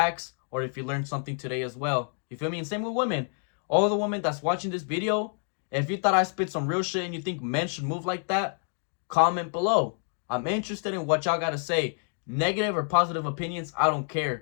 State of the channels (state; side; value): silent; right; 59 dB below the other